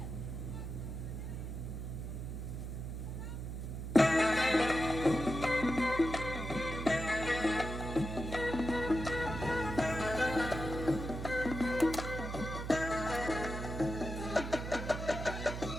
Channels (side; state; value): right; noise; hum, 6 dB below the sound